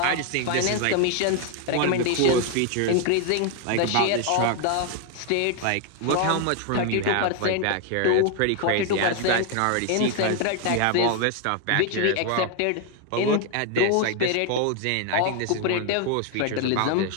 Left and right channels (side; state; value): both; different; correlation 0.01